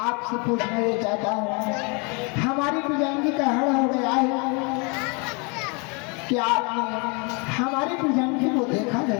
आपसे पूछना ये चाहता हूँ, हमारी पिजांगी का हरण हो गया है, क्या आपने हमारी पिजांगी को देखा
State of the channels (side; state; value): right; quieter; 31.7 dB